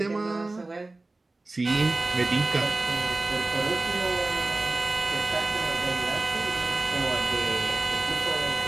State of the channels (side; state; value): left; quieter; 3.1 dB